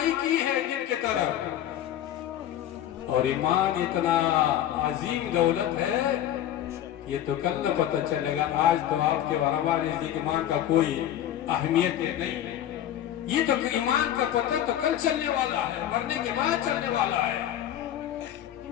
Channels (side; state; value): right; quieter; 11.5 dB